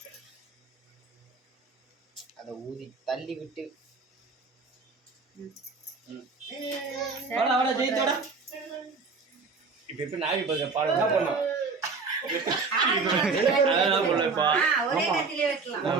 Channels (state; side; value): quieter; left; 4.5 dB